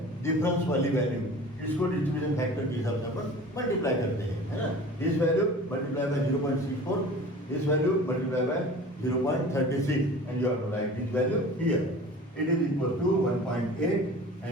डिफरेंस वाली वैल्यू, इसको डिस्ट्रीब्यूशन फैक्टर के हिसाब से अपन मल्टीप्लाई करते हैं, है ना। This value multiply by 0.64, this value multiply by 0.36 and you have to write this value here. It is equal to 1.8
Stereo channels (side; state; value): both; normal; correlation 0.41